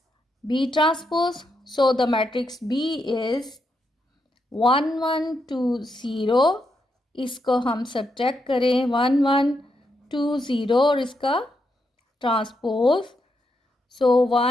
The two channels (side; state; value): both; normal; correlation 0.81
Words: B transpose. So the matrix B is 1, 1, 2, 0। इसको हम सब्ट्रैक्ट करें 1, 1, 2, 0 और इसका ट्रांसपोज। सो